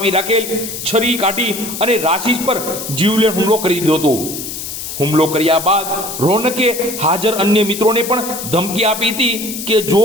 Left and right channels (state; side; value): noise; left; hiss, 7 dB below the sound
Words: રાખેલ છરી કાઢી અને રાશિશ પર જીવલેણ હુમલો કરી દીધો હતો। હુમલો કર્યા બાદ રોનકે હાજર અન્ય મિત્રોને પણ ધમકી આપી હતી કે જો